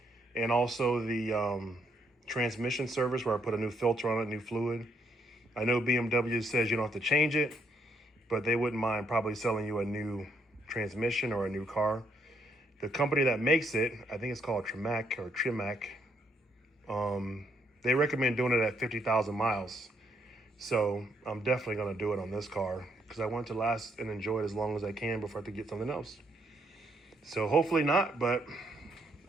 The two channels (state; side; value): normal; both; correlation 0.73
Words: and also the transmission service, where I put a new filter on it, new fluid. I know BMW says you don't have to change it, but they wouldn't mind probably selling you a new transmission or a new car. The company that makes it, I think it's called Trimac or Trimac, they recommend doing it at 50,000 miles. So I'm definitely going to do it on this car because I want to last and enjoy it as long as I can before I have to get something else. So hopefully not, but